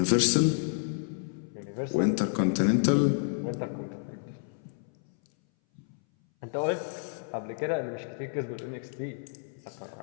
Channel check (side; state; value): right; silent; 58 dB below the other